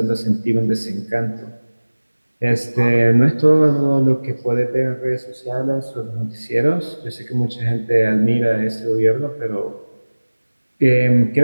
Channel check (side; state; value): both; inverted; correlation -1.00